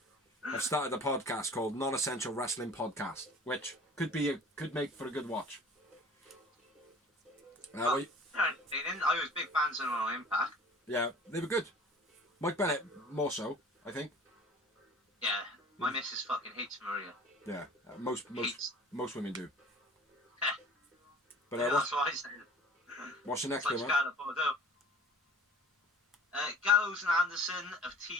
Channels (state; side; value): normal; both; correlation 0.46